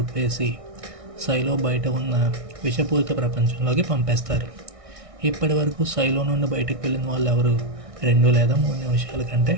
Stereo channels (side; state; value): left; late; 1.6 ms